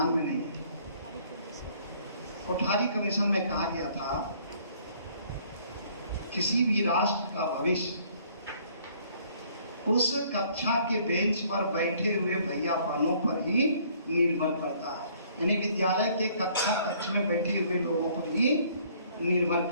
में नहीं है। कोठारी कमीशन में कहा गया था किसी भी राष्ट्र का भविष्य उस कक्षा के बेंच पर बैठे हुए भैया बहनों पर ही निर्भर करता है, यानी विद्यालय के कक्ष में बैठे हुए लोगों पर ही निर्भर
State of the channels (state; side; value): inverted; both; correlation -0.60